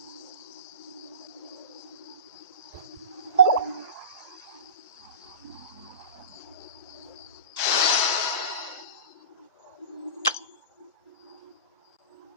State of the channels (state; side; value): inverted; both; correlation -0.32